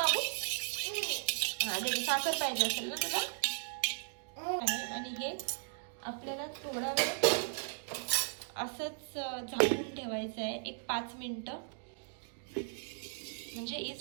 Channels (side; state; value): left; silent; digital silence